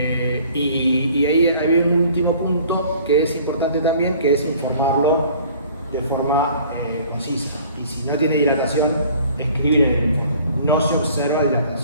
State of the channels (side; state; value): both; inverted; correlation -0.52